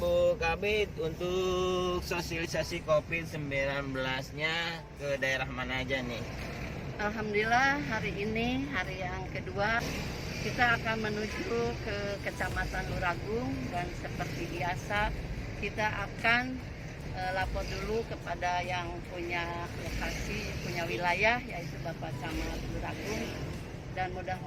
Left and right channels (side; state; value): both; identical; correlation 1.00